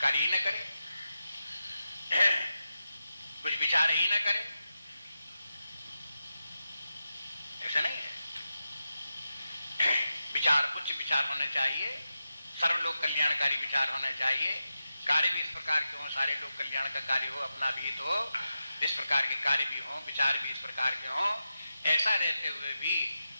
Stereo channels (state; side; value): inverted; both; correlation -0.90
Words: ही न करे, कुछ विचार ही न करे। ऐसा नहीं है। विचार उच्च विचार होने चाहिए, सर्वलोक कल्याणकारी विचार होने चाहिए, कार्य भी इस प्रकार के हो, सारे लोग कल्याण का कार्य हो, अपना भी हो, इस प्रकार के कार्य भी हो, विचार भी इस प्रकार के हो। ऐसा रहते हुए भी